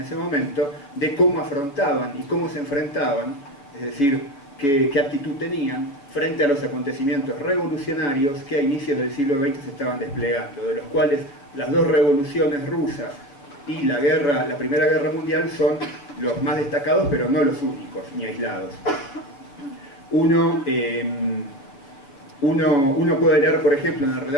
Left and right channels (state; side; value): late; right; 7.1 ms